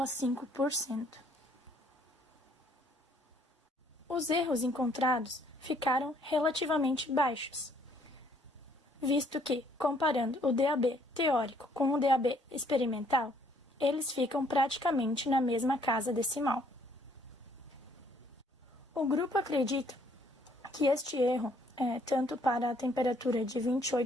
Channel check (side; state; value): both; normal; correlation 0.65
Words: Os erros encontrados ficaram relativamente baixos, visto que, comparando o DAB teórico com o DAB experimental, eles ficam praticamente na mesma casa decimal. O grupo acredita que este erro, tanto para a temperatura de